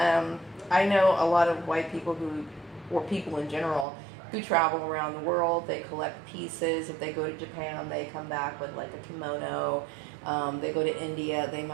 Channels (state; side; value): drops out; left; at 3.9 s